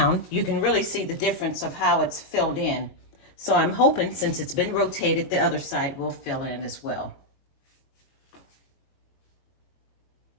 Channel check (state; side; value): late; right; 22 ms